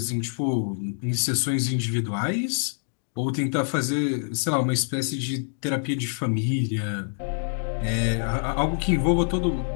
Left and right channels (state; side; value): silent; right; 61 dB below the other